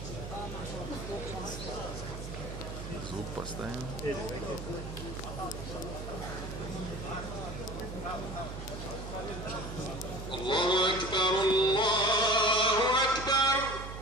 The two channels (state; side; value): noise; right; hum, 8 dB below the sound